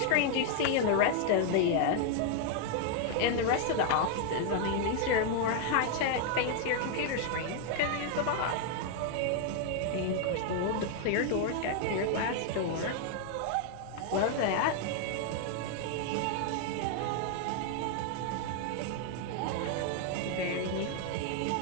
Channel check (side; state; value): both; different; correlation 0.00